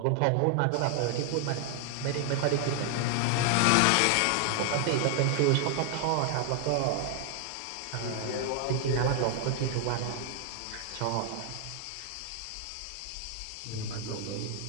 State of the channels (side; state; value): both; different; correlation 0.00